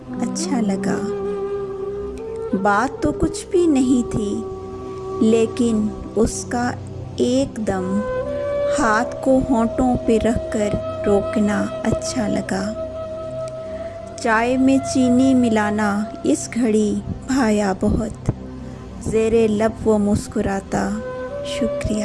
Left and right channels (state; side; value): identical; both; correlation 1.00